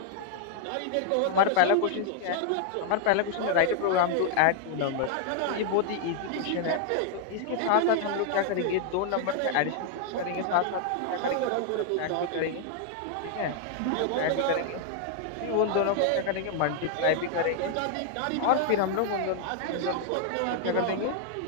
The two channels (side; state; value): both; different; correlation 0.00